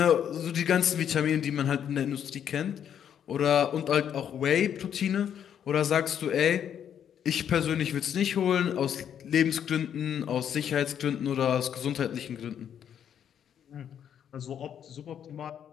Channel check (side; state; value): right; quieter; 9.0 dB